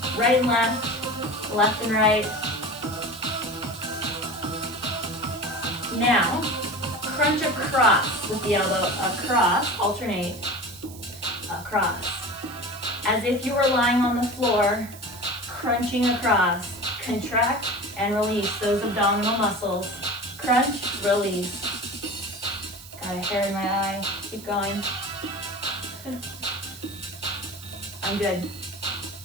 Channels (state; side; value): noise; right; hiss, 17 dB below the sound